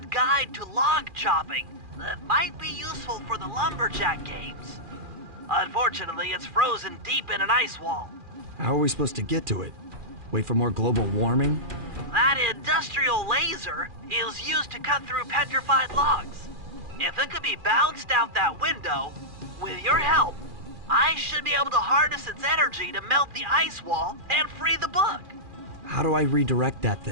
guide to log chopping that might be useful for the lumberjack games. Unfortunately, it's frozen deep in an ice wall. How are we supposed to get to it? Wait for more global warming? That industrial laser is used to cut through petrified logs. If it could be bounced out that window, with your help, I should be able to harness its energy to melt the ice wall and free the book. How do I redirect that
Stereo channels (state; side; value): late; left; 2.4 ms